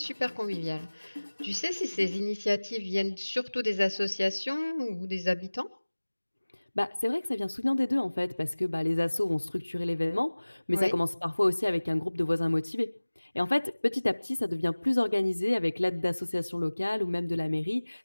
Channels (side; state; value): both; inverted; correlation -1.00